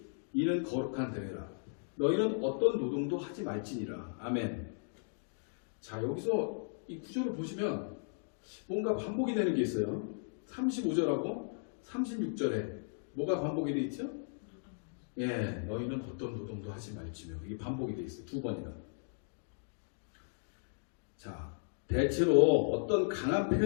이는 거룩한 대회라. 너희는 어떤 노동도 하지 말지니라. 아멘. 자, 여기서 이 구절을 보시면 뭔가 반복이 되는 게 있어요. 35절하고 36절에 뭐가 반복이 되어 있죠? 예, 너희는 어떤 노동도 하지 말지며. 이게 반복이 되어 있어요. 두 번이나. 자, 대체로 어떤 강한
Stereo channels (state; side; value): silent; right; digital silence